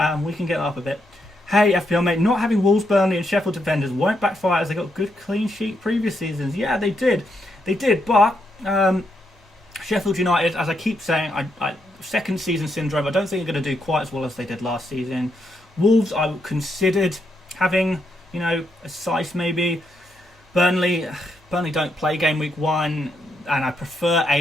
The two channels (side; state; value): both; normal; correlation 0.79